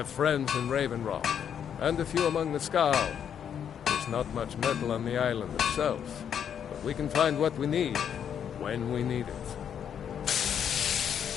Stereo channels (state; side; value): quieter; right; 8.5 dB